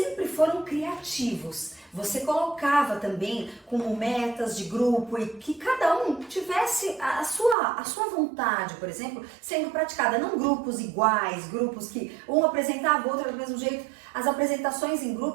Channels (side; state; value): left; drops out; at 7.6 s